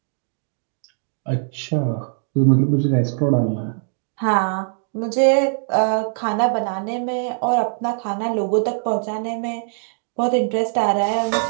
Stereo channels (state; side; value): silent; left; 65 dB below the other